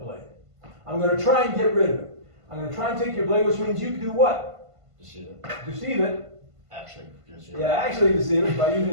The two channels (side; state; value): left; late; 1.5 ms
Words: I'm going to try and get rid of it. I'm going to try and take your blade, which means you can do what? Deceive it. Deceive it. Actually, deceive it. Yeah, actually deceive it by